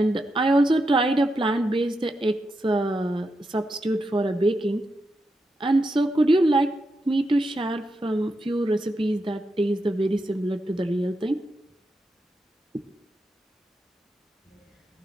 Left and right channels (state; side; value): normal; both; correlation 0.85